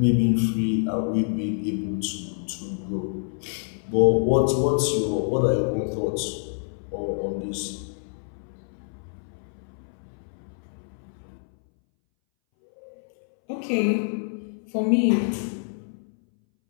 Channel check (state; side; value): silent; right; 61 dB below the other